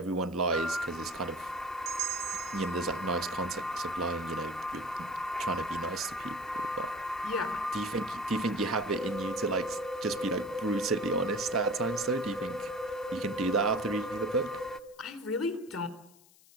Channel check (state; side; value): noise; left; hiss, 26 dB below the sound